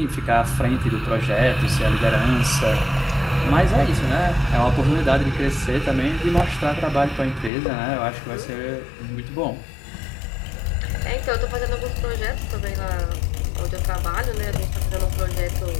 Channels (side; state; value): right; drops out; at 7.5 s